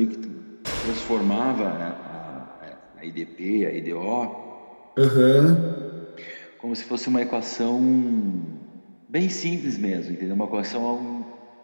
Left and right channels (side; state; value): both; inverted; correlation -1.00